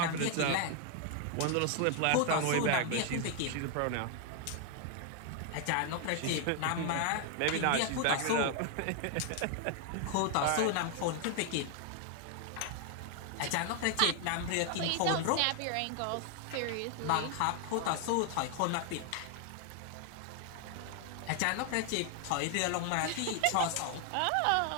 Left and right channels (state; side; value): different; both; correlation 0.00